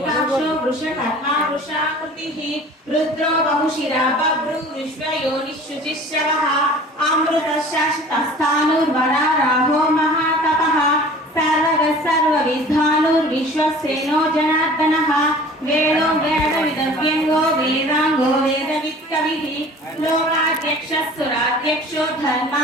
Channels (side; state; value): both; normal; correlation 0.45